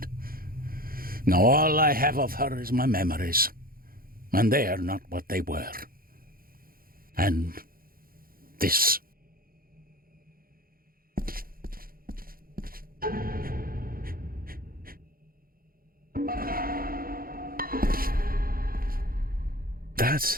Now all I have of her is my memories. And they are not what they were. And this.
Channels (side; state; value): left; late; 0.42 ms